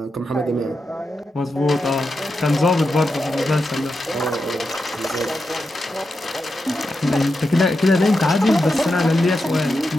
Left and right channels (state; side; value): normal; both; correlation 0.88